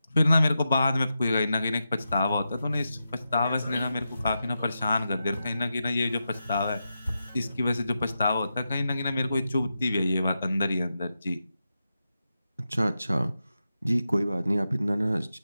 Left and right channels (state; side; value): inverted; both; correlation -0.89